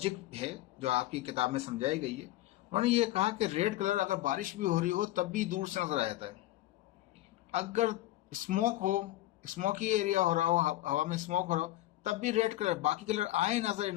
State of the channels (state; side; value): quieter; right; 16.0 dB